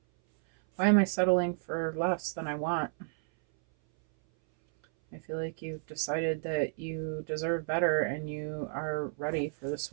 settling for less than I want? I feel like you've decided that you deserve better and you are ready for this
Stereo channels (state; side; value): silent; left; 57 dB below the other